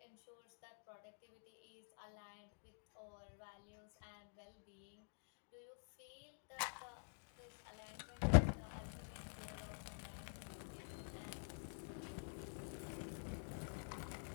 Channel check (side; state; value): right; silent; digital silence